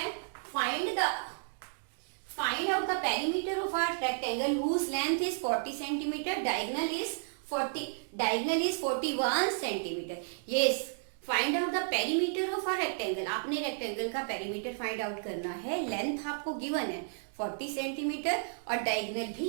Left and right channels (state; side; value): silent; left; digital silence